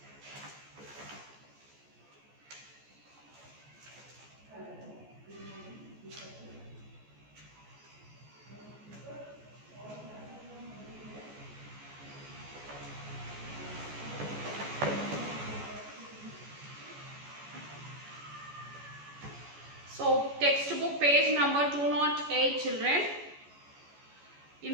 So, textbook page number 208, children.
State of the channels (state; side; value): late; left; 14 ms